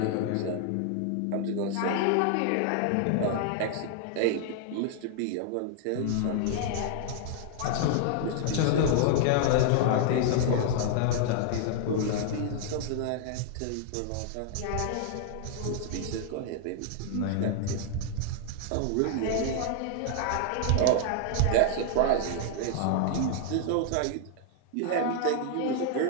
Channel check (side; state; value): both; different; correlation -0.01